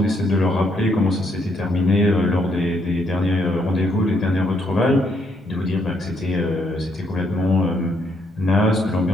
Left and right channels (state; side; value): normal; both; correlation 0.73